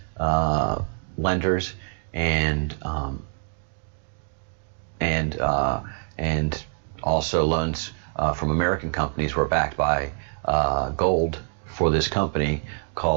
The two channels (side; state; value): left; silent; 62 dB below the other